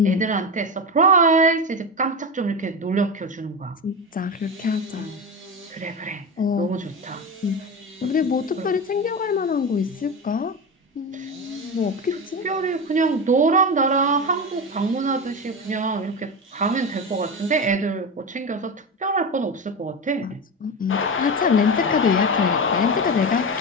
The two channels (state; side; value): normal; both; correlation 0.20